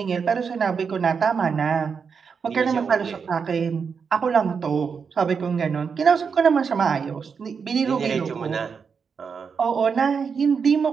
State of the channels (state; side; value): quieter; left; 6.0 dB